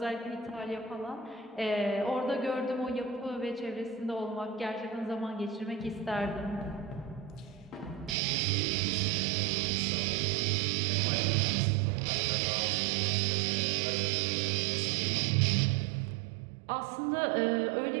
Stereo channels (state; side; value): drops out; left; at 8.2 s